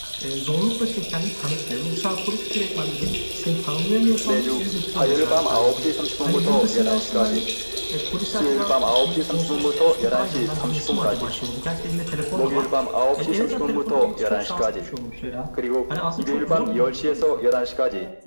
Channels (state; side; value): inverted; both; correlation -1.00